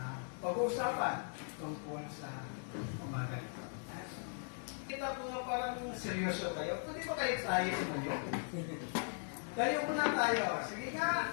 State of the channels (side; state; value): right; silent; 52 dB below the other